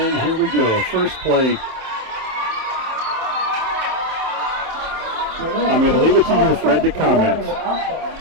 here we go, first play. I'm going to leave it to you, Fred, to comment.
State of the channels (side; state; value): left; late; 27 ms